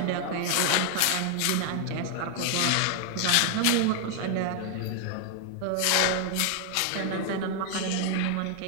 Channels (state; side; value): different; both; correlation 0.00